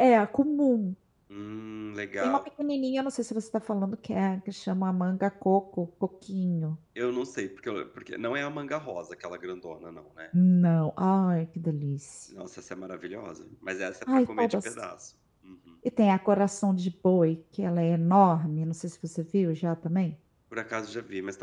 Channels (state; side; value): identical; both; correlation 1.00